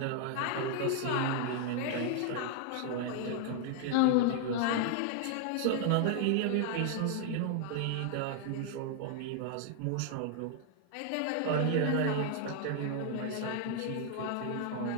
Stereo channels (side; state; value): both; different; correlation 0.00